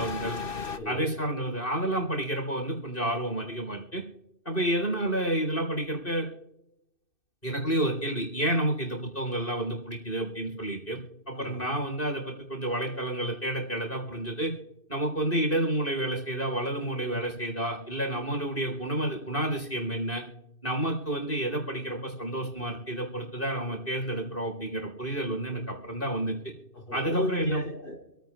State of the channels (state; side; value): late; right; 2.6 ms